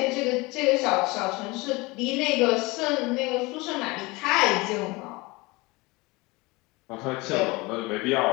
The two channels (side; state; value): right; quieter; 23.7 dB